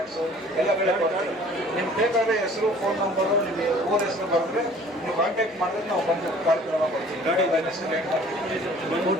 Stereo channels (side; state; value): both; normal; correlation 0.51